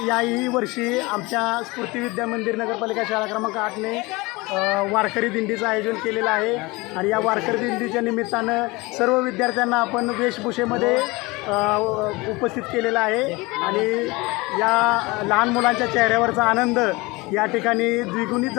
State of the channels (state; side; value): quieter; right; 23.4 dB